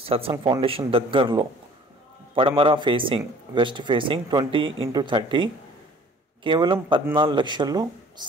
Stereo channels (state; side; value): normal; both; correlation 0.51